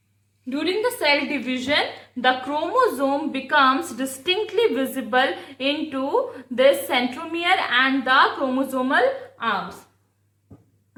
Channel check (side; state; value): both; identical; correlation 1.00